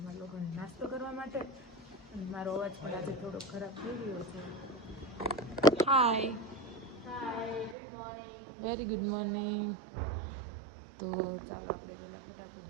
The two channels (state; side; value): drops out; left; at 7.8 s